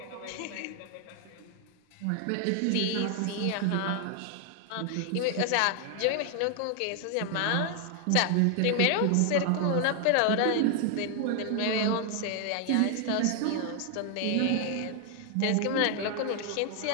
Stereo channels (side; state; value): both; different; correlation 0.00